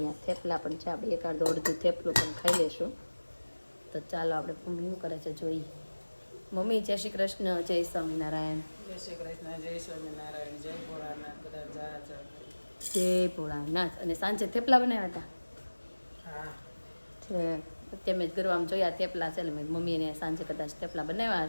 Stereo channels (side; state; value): both; inverted; correlation -1.00